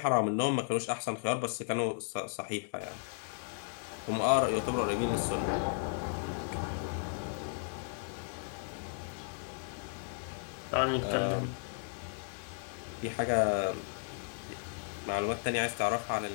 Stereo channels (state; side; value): silent; right; digital silence